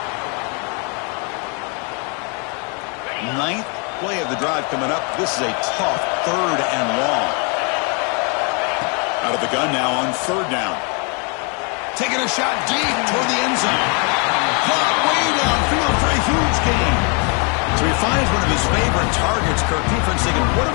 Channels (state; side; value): quieter; right; 35.9 dB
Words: Ninth play of the drive coming up. This is a tough third and long. Out of the gun now on third down. Taking a shot deep toward the end zone. Caught way downfield for a huge gain. So he finds one of his favorite targets. Kirk defense thinking, what do